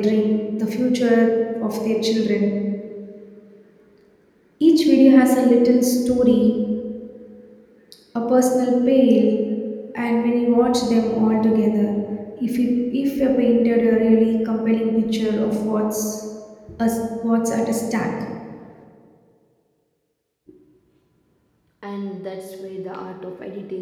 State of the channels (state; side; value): identical; both; correlation 1.00